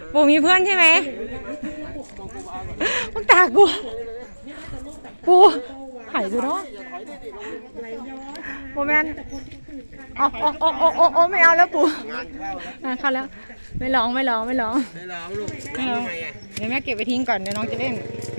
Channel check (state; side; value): inverted; both; correlation -1.00